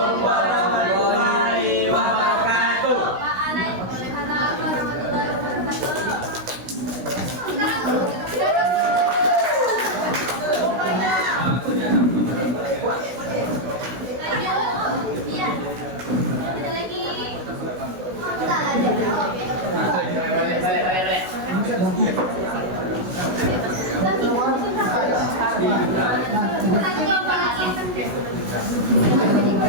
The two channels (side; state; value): left; late; 16 ms